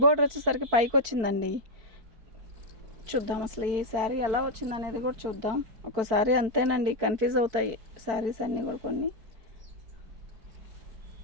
బార్డర్ వచ్చేసరికి పైకి వచ్చిందండి. చూద్దాం అసలు ఈ శారీ ఎలా వచ్చింది అనేది కూడా చూద్దాం. ఒక్కోసారి అంతేనండి, కన్ఫ్యూజ్ అవుతాయి శారీస్ అన్నీ కూడా. కొన్ని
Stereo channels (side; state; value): left; late; 4.5 ms